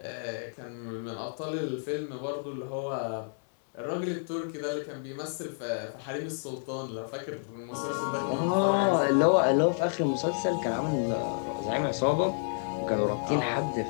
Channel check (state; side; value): silent; right; digital silence